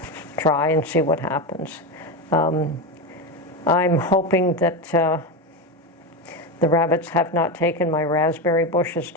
try and see what happens. I'm hoping that the rabbits have not taken my raspberry bushes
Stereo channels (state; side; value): normal; both; correlation 0.16